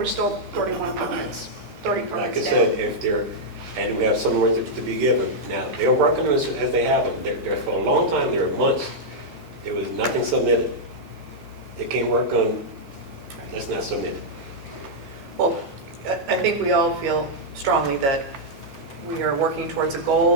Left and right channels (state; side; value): normal; both; correlation -0.05